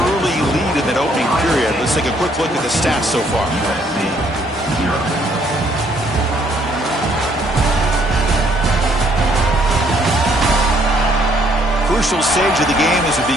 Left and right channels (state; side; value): normal; both; correlation 0.66